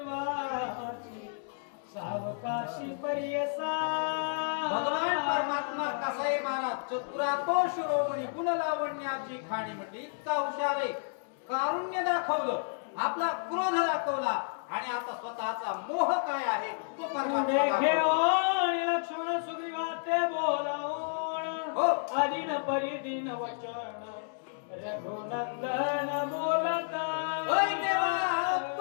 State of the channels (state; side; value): silent; right; digital silence